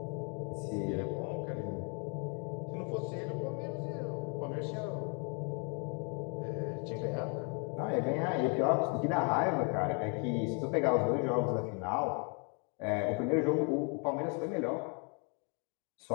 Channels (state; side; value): quieter; right; 37.6 dB